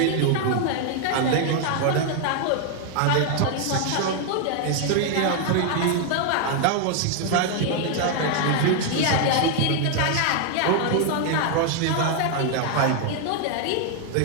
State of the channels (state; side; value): different; both; correlation 0.00